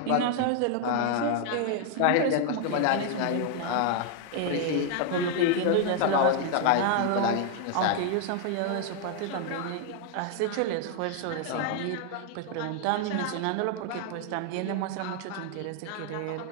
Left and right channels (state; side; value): different; both; correlation 0.00